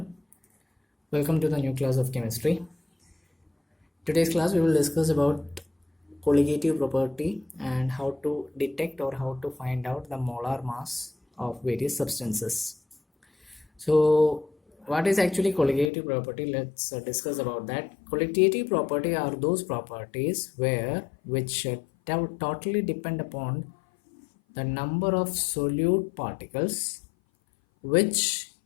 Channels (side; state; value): right; drops out; at 15.9 s